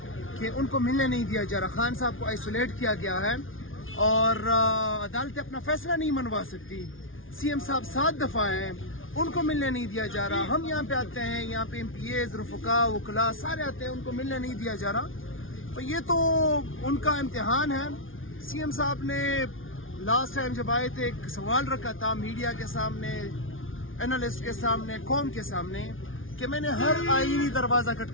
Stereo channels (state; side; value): late; right; 0.58 ms